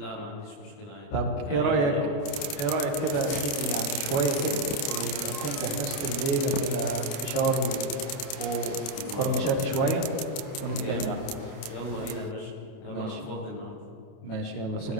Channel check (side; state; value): right; late; 28 ms